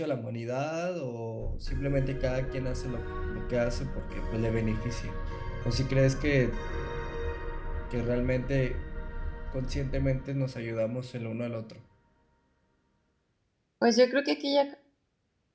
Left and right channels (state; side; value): identical; both; correlation 1.00